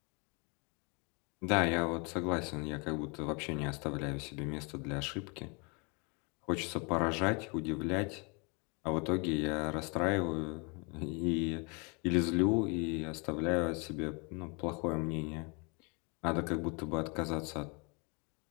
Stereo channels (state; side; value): quieter; right; 31.8 dB